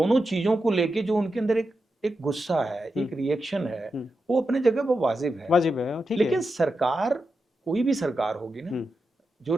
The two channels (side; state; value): both; normal; correlation 0.88